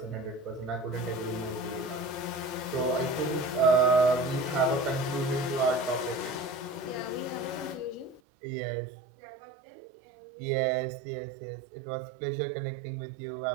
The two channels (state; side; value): drops out; left; at 8.2 s